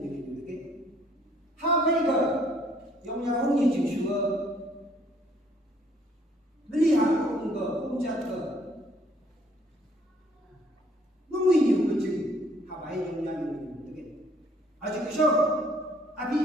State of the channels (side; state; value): both; normal; correlation 0.63